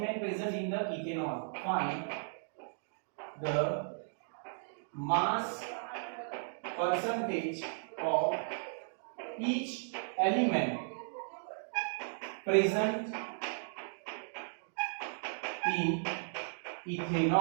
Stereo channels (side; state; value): left; silent; digital silence